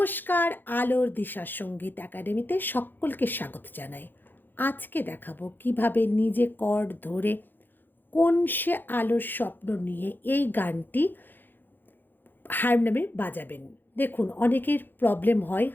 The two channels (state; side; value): late; right; 0.092 ms